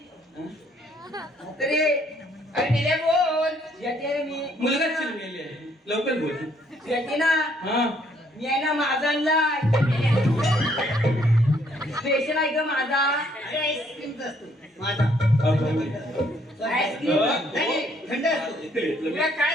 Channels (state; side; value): normal; both; correlation 0.67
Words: म्हातारे अरे निल्या बोल तुझ्याची आहे ना मी मुलगा चिरलेली आहे लवकर बोल तुझ्याची ना हा मी आहे ना माझा आणलाय स्पेशल आहे का माझा अरे आईस्क्रीमचा असतो माझा आईस्क्रीम नाही, थंड असतो. तुला